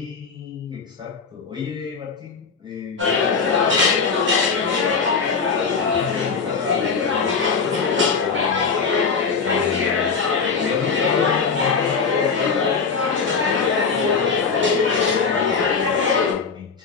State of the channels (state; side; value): quieter; right; 5.3 dB